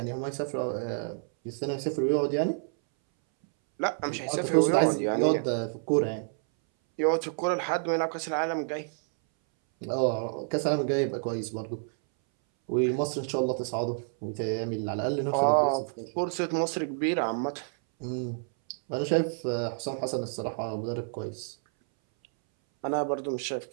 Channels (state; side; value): silent; left; 59 dB below the other